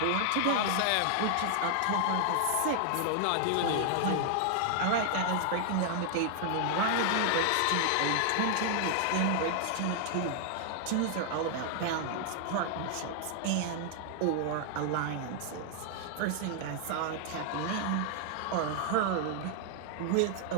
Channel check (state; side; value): different; both; correlation 0.00